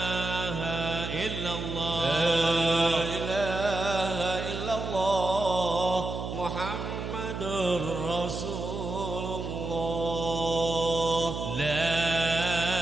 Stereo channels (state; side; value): noise; right; hum, 5 dB below the sound